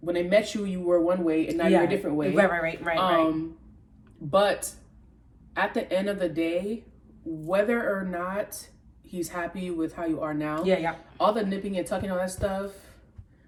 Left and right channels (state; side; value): identical; both; correlation 1.00